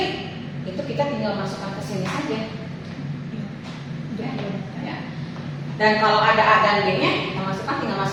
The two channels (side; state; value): both; identical; correlation 1.00